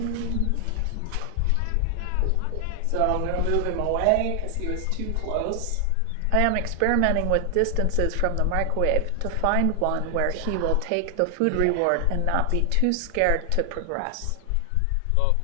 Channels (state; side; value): different; both; correlation 0.00